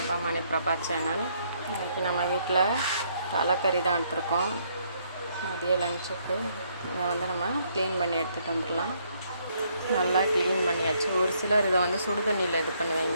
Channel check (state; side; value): inverted; both; correlation -0.70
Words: Mani Prabha channel. இன்றைக்கி நம்ம வீட்டில் தலைக்கறி தான் எடுத்துருக்கோம். மதிய லஞ்சுக்கு இதை நம்ம க்ளீன் பண்ணி எடுத்துகிட்டு வந்துடலாம். நல்லா க்ளீன் பண்ணியாச்சு. ஒரு சிலர் இதை சுடு தண்ணியில் இது